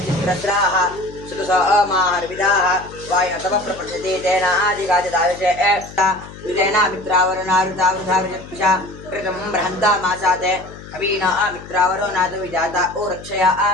सुतसमाहर्विदाः वायुतमः प्रपृच्छति तेन आदिगादिदायुषे विदेना मित्रावरुणारुतावृथावृजत्पिषा कृतं बृहन्तामासाते कवीना मित्रावरुणादु विजाता ओ रक्षया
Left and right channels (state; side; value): noise; left; hum, 16 dB below the sound